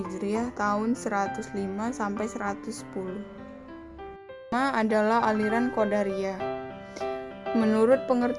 tahun 105 sampai 110. Pertama adalah aliran Qadariyah. Menurut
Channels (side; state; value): both; identical; correlation 1.00